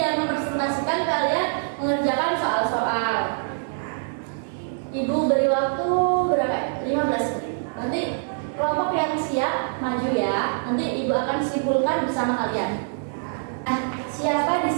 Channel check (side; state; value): left; silent; 62 dB below the other